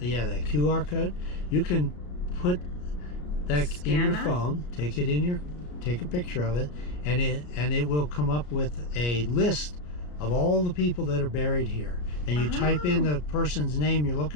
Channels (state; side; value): late; right; 34 ms